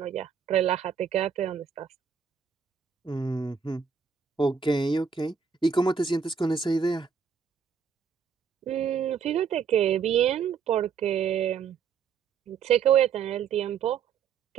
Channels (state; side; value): quieter; left; 6.6 dB